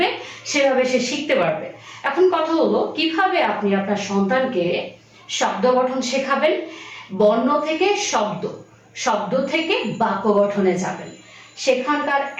সেভাবে সে শিখতে পারবে। এখন কথা হলো কিভাবে আপনি আপনার সন্তানকে শব্দ গঠন শেখাবেন। বর্ণ থেকে শব্দ, শব্দ থেকে বাক্য গঠনে যাবেন। সেখানকার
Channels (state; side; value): identical; both; correlation 1.00